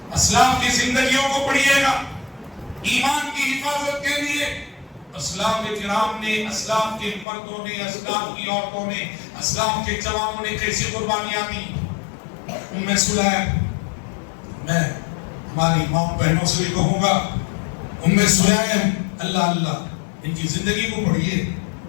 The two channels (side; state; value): right; drops out; at 7.2 s